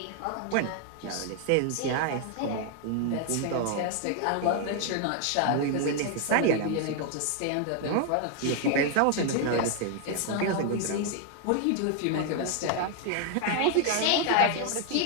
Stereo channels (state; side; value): different; both; correlation 0.00